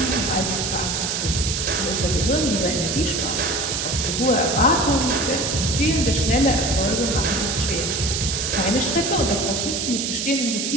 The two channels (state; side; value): noise; right; hiss, 1 dB below the sound